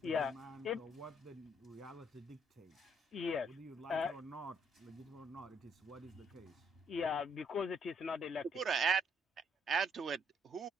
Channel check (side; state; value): both; normal; correlation 0.70